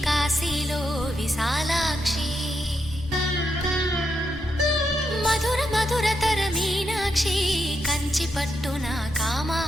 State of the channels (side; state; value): both; normal; correlation 0.83